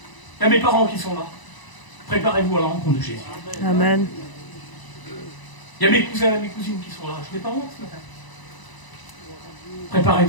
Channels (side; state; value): right; late; 1.0 ms